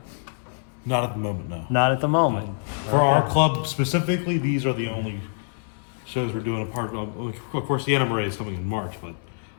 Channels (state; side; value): silent; right; 62 dB below the other